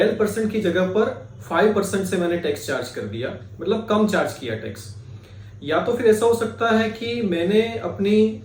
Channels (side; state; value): both; identical; correlation 1.00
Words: की जगह पर 5% से मैंने टैक्स चार्ज कर दिया, मतलब कम चार्ज किया टैक्स। या तो फिर ऐसा हो सकता है कि मैंने अपनी